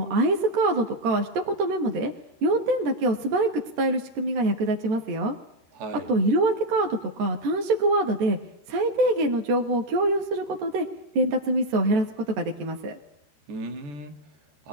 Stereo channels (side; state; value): left; late; 14 ms